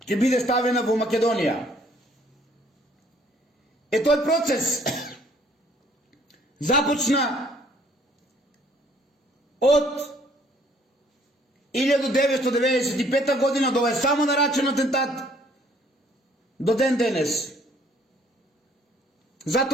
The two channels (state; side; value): normal; both; correlation 0.61